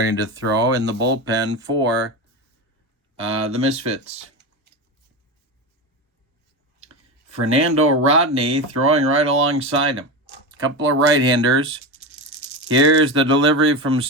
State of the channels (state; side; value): normal; both; correlation 0.19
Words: to throw in the bullpen for the Misfits. Fernando Rodney throwing right alongside him. A couple of right-handers. Here's the delivery from